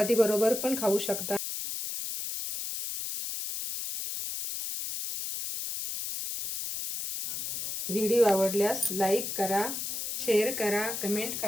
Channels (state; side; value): noise; left; hiss, 5 dB below the sound